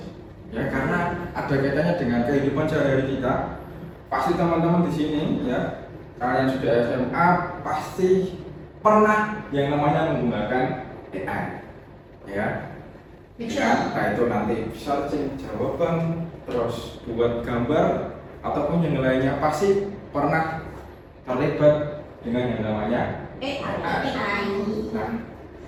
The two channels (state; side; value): identical; both; correlation 1.00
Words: Ya, karena ada kaitannya dengan kehidupan sehari-hari kita. Pasti teman-teman di sini ya, kalian sudah SMA pasti pernah yang namanya menggunakan AI, ya. Ya, nah itu nanti searching jawaban, terus buat gambar ataupun yang lainnya pasti pernah terlibat dengan yang namanya AI. Nah,